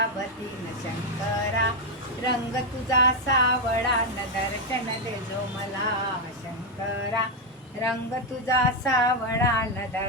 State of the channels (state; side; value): normal; both; correlation 0.03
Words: न शंकरा रंग तुझा सावळा न दर्शन दे जो मला. शंकरा रंग तुझा सावळा न